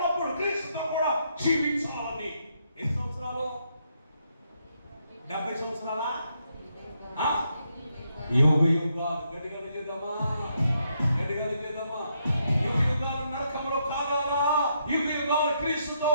క్రీస్తుతో కూడా జీవించాలని. ఎన్ని సంవత్సరాలు? 70 సంవత్సరాలా? యుగ యుగాలు గడిగలు చేద్దామా, గడిగలు చేద్దామా. యుగ యుగాలు నరకంలో కాగాలా, యుగ యుగాలు క్రీస్తుతో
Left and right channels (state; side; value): inverted; both; correlation -0.77